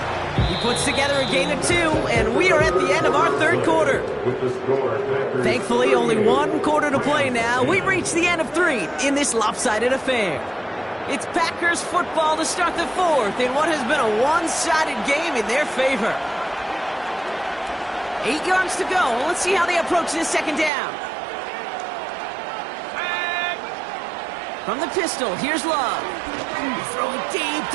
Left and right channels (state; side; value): drops out; left; at 20.7 s